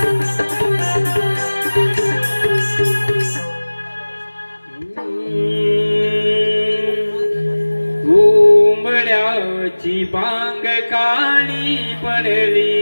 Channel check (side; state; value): both; inverted; correlation -1.00